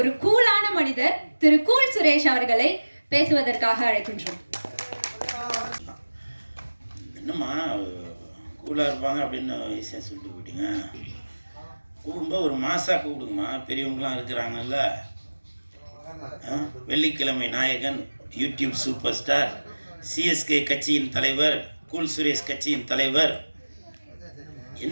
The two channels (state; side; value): inverted; both; correlation -1.00